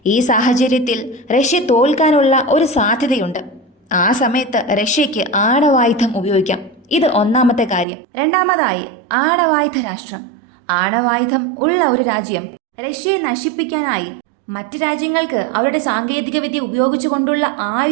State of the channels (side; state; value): left; drops out; at 7.9 s